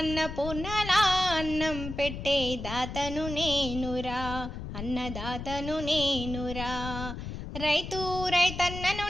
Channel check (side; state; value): left; noise; rumble, 7 dB below the sound